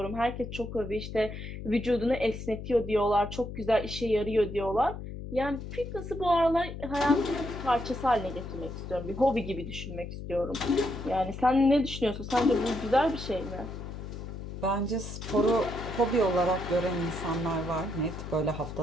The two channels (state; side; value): noise; left; hum, 9 dB below the sound